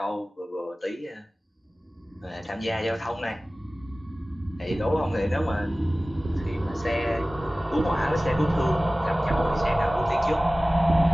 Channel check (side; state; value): both; normal; correlation 0.97